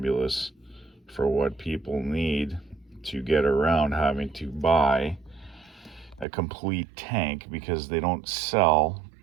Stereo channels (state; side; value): drops out; left; at 6.2 s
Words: for what people need to get around having to buy a complete tank, because they don't sell